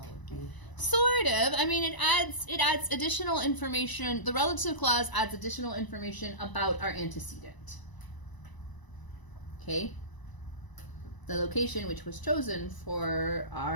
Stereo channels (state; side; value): late; right; 1.0 ms